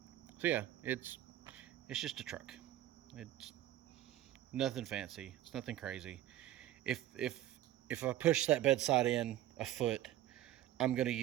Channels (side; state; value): left; quieter; 13.3 dB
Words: yeah, it's just a truck. It's nothing fancy. It's nothing crazy. If I push that bedside in a foot, I'm gonna